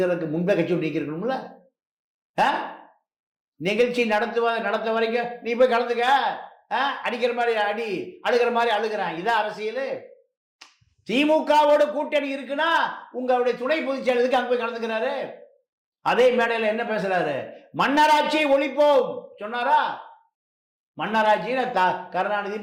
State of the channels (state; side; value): identical; both; correlation 1.00